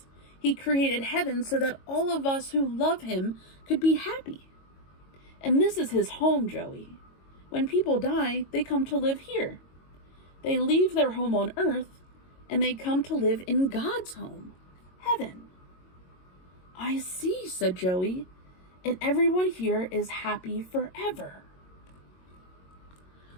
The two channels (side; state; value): right; late; 22 ms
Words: He created heaven so that all of us who love him could be happy. And this is his home, Joey. When people die, they come to live here. They leave their home on earth, and they come to live in God's home, heaven. I see, said Joey, and everyone here is happy forever.